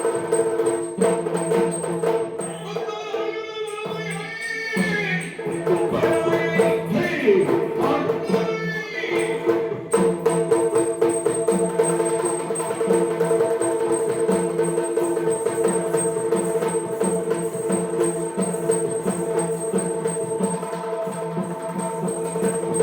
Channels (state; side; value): identical; both; correlation 1.00